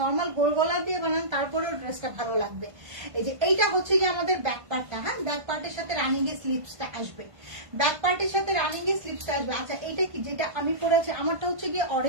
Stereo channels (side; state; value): left; late; 1.5 ms